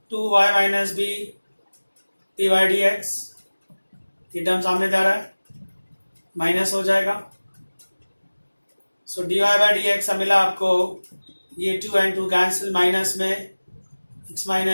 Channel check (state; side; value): inverted; both; correlation -1.00